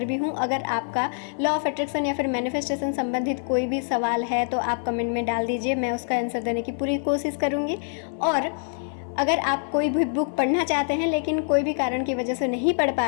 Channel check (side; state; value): right; silent; 58 dB below the other